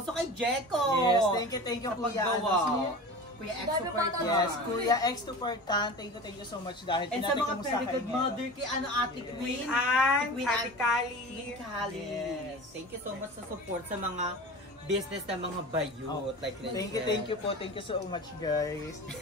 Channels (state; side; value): normal; both; correlation 0.34